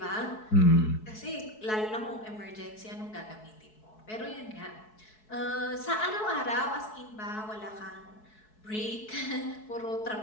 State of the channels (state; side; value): late; right; 4.6 ms